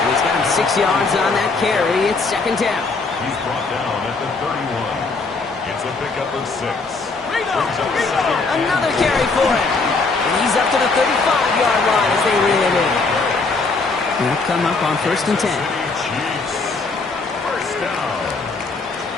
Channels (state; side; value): quieter; right; 3.9 dB